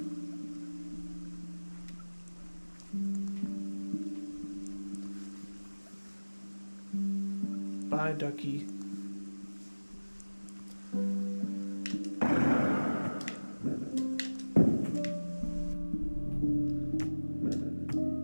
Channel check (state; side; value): inverted; both; correlation -1.00